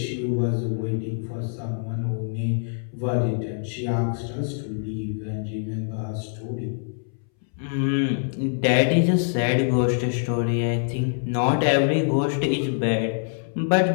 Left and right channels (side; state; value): right; silent; 62 dB below the other